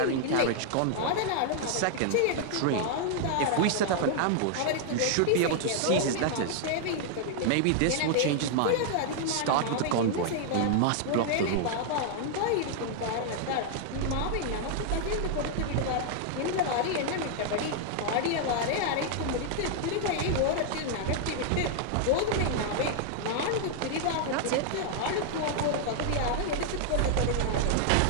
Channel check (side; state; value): both; different; correlation 0.00